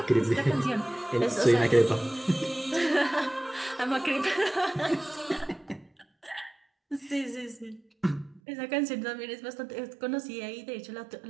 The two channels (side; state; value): left; drops out; at 8.4 s